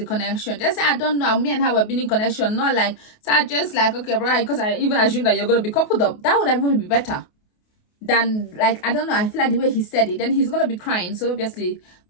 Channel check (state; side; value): late; right; 28 ms